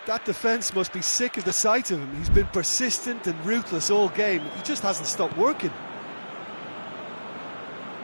That defence must be sick of the sight of him. He's been persistent and ruthless all game. He just hasn't stopped working.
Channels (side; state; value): both; inverted; correlation -1.00